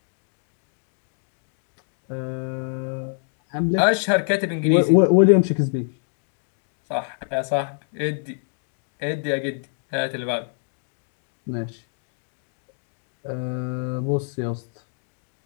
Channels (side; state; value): right; silent; digital silence